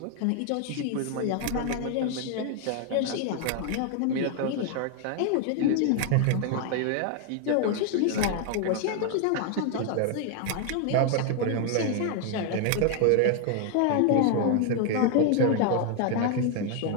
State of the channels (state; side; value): different; both; correlation 0.00